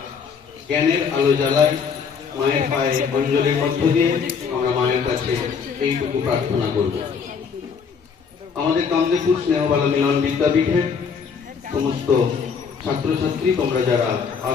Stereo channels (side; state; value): right; quieter; 6.1 dB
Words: জ্ঞানের আলো জ্বালাই। মায়ের পায়ে অঞ্জলির মধ্য দিয়ে আমরা মায়ের কাছে এইটুকু প্রার্থনা করব। আমাদের কামদেবপুর স্নেহবালা মিলন বিদ্যাপীঠের সমস্ত ছাত্রছাত্রী, তোমরা যারা